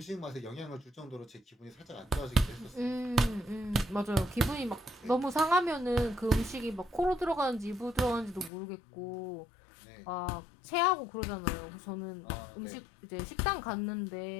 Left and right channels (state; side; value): drops out; right; at 8.5 s